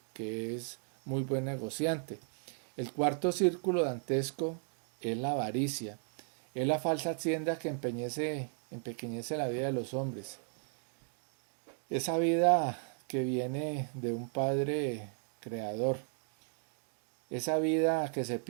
que es muy buen negociante. El cuarto círculo dantesco es la avaricia. Es la falsa hacienda que empequeñece la vida de los hombres. Esa vida que viene de un Padre creador. Esa vida que se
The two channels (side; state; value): left; silent; 54 dB below the other